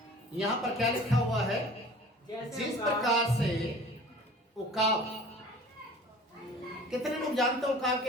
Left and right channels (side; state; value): both; normal; correlation 0.45